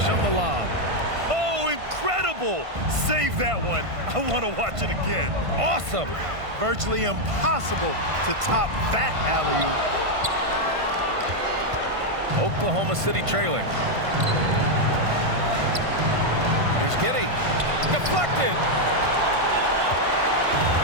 on the lob. Oh, incredible. Save that one. I want to watch it again. Awesome. Virtually impossible to top that alley-oop. Oklahoma City trailing. Here's Giddey. Deflected.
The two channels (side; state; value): left; late; 1.5 ms